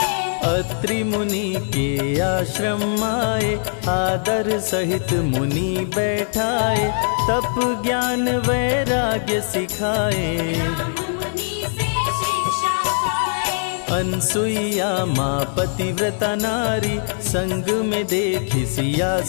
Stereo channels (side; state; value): right; silent; digital silence